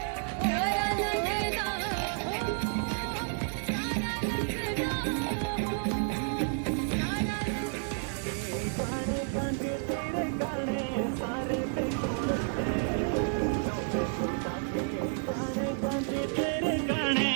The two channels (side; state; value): left; silent; 56 dB below the other